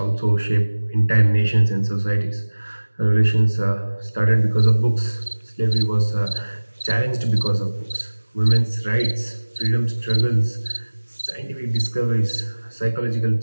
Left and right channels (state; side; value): inverted; both; correlation -1.00